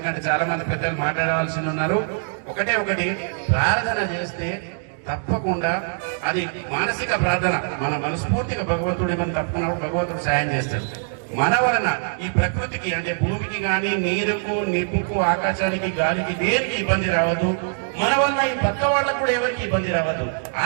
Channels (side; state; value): left; silent; digital silence